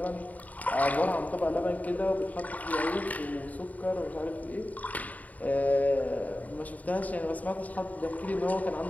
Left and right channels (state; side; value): late; right; 0.073 ms